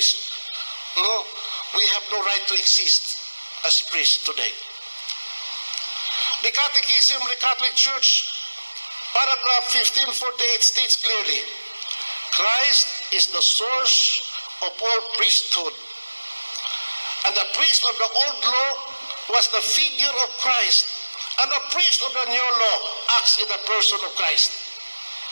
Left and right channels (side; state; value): both; inverted; correlation -1.00